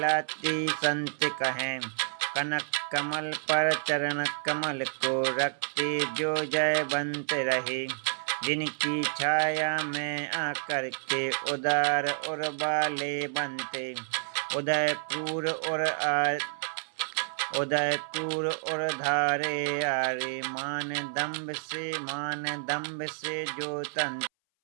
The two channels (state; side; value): silent; left; 58 dB below the other